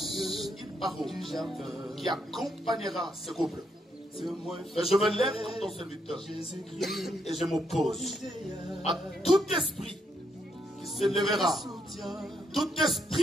une parole qui accompagnera ce couple. Et je me lève comme ton serviteur et je m'oppose à tout esprit qui se lèvera, tout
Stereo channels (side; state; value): both; normal; correlation 0.77